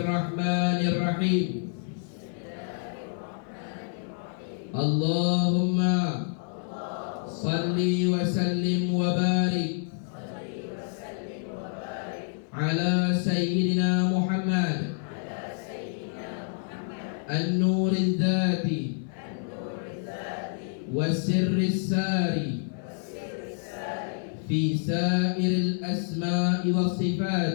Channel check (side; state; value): right; silent; 59 dB below the other